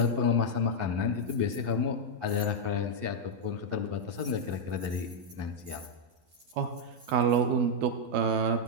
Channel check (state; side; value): late; left; 12 ms